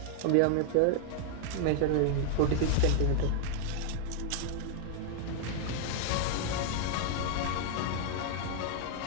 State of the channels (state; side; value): different; both; correlation 0.00